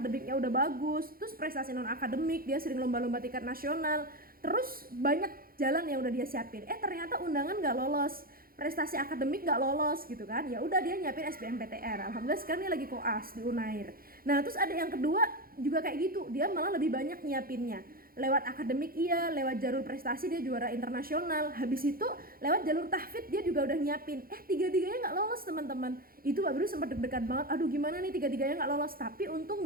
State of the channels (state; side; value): late; left; 0.42 ms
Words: udah bagus, terus prestasi non akademik, dia sering lomba-lomba tingkat nasional, terus banyak jalan yang udah dia siapin. Ternyata undangan nggak lolos, prestasi akademik nggak lolos gitu kan. Ya udah dia nyiapin SBMPTN. Alhamdulillah sekarang dia lagi koas di Unair. Nah, terus ada yang kedua juga kayak gitu, dia malah lebih banyak nyiapinnya. Lewat akademik iya, lewat jalur prestasi dia juara internasional. Habis itu lewat jalur tahfidz dia juga udah nyiapin. Tiga-tiganya nggak lolos teman-teman. Itu Mbak Biru sempat deg-degan banget. Aduh gimana nih tiga-tiganya nggak lolos. Tapi untung